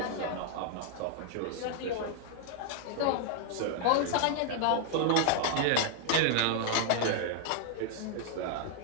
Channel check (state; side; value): different; both; correlation 0.00